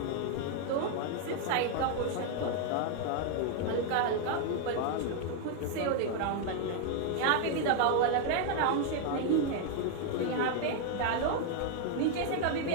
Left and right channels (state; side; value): different; both; correlation 0.00